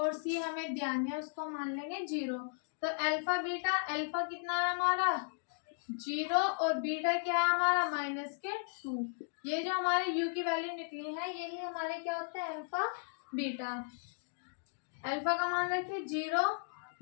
c हमें ध्यान है उसको मान लेंगे 0। तो अल्फा बीटा, अल्फा कितना है हमारा 0 और बीटा क्या है हमारा माइनस के 2। ये जो हमारे u की वैल्यू निकली है यही हमारे क्या होता है अल्फा बीटा। अल्फा का मान रखिए 0,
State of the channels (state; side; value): silent; right; digital silence